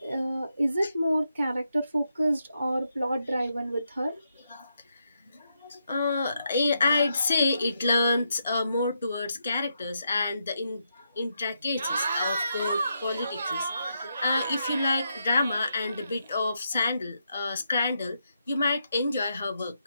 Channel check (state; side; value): inverted; both; correlation -0.82